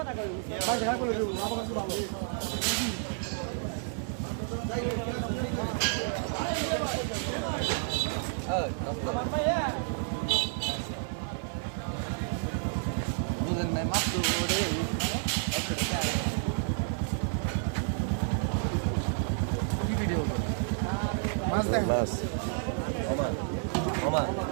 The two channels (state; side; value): silent; left; digital silence